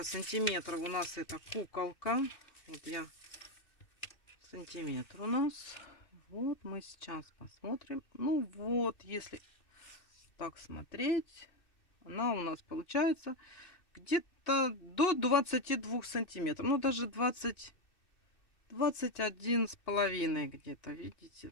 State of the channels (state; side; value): late; right; 2.6 ms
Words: сантиметров у нас эта куколка. Вот я сантиметр у нас. Вот мы сейчас посмотрим. Ну вот, если так смотреть, она у нас получается где-то до 22 сантиметров. Ну, даже 21 с половиной где-то, видите?